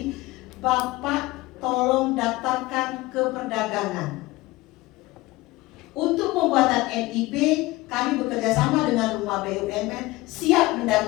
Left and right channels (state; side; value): quieter; right; 19.9 dB